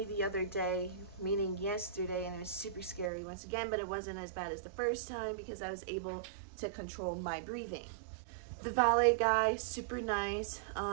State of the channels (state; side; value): drops out; left; at 3.1 s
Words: the other day, meaning yesterday, and it was super scary once again, but it wasn't as bad as the first time because I was able to control my breathing. The valet guy, super nice.